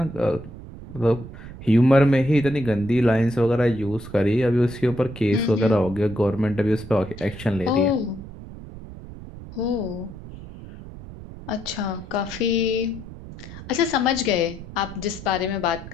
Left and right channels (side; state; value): right; noise; rumble, 14 dB below the sound